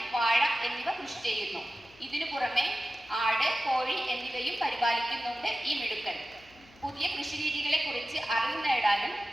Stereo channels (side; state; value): left; noise; hum, 26 dB below the sound